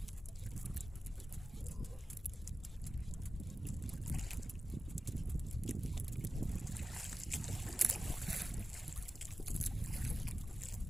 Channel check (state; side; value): normal; both; correlation 0.94